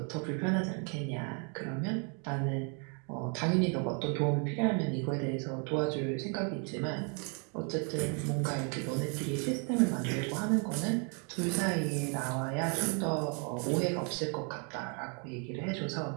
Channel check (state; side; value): quieter; left; 37.8 dB